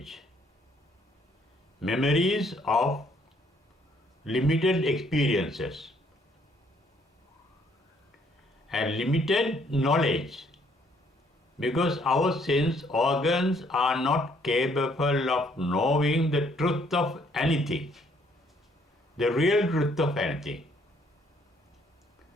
Memories of limited experiences and limited knowledge, because our sense organs are not capable of knowing the truth of anything, the real truth of anything.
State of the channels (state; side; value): normal; both; correlation 0.66